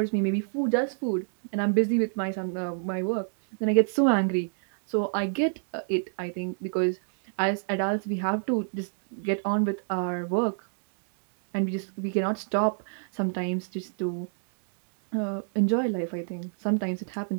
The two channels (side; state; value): left; silent; digital silence